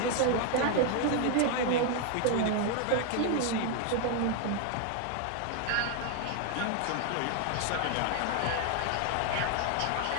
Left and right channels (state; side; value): different; both; correlation 0.00